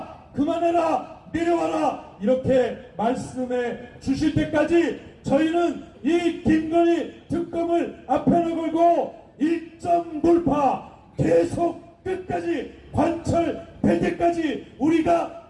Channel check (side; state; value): both; identical; correlation 1.00